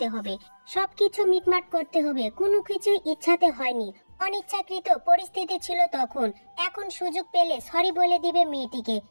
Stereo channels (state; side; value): inverted; both; correlation -1.00